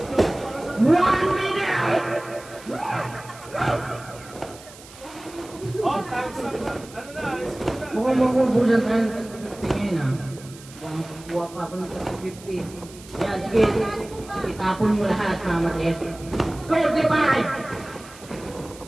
1 minute! Oh, time's up na. Ano na, alis ko na. Mukhang makubusan tayo ng 50 ngayon ha. Mukhang kukuha pa ako ng 50. Yan, sige. Itapon mo lahat, mamatis.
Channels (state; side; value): noise; right; hiss, 20 dB below the sound